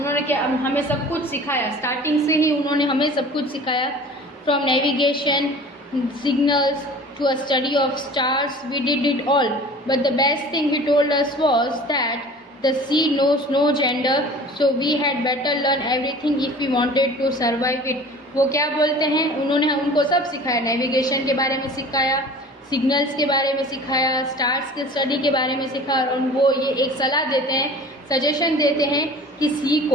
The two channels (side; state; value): both; normal; correlation 0.43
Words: क्या हमें सब कुछ सिखाया, स्टार्टिंग से ही उन्होंने हमें सब कुछ सिखाया। from navigation, signals to a study of stars. We did it all. But the best thing he told us was that the sea knows no gender, so we had better learn everything if we wanted to survive it. वो क्या बोलते हैं, उन्होंने उनको सब सिखाया, navigation के बारे में सिखाया, सिग्नल्स के बारे में सिखाया, स्टार्स के स्टडी के बारे में सिखाया, और वो ये एक सलाह देते हैं, सजेशन देते हैं कि सी